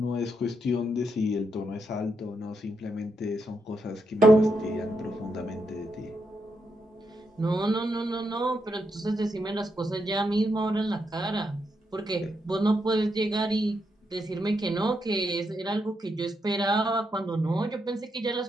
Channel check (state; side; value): normal; both; correlation 0.81